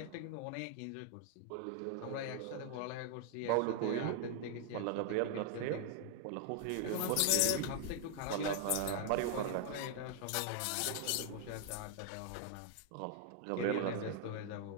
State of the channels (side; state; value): both; different; correlation 0.00